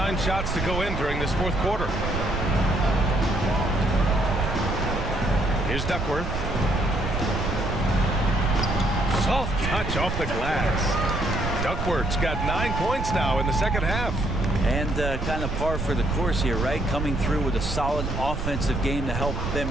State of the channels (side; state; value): right; noise; rumble, 5 dB below the sound